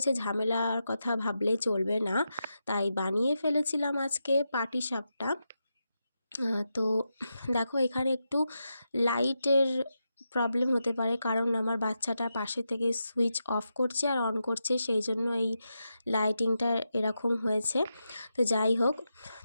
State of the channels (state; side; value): inverted; both; correlation -0.87